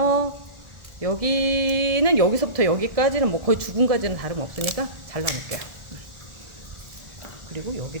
여기는 여기서부터 여기까지는 뭐 거의 죽은 가지는 다름없으니까 잘라놓을게요. 그리고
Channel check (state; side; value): late; left; 1.4 ms